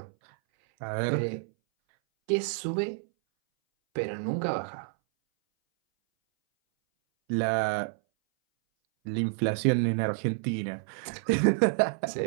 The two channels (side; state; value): left; silent; 59 dB below the other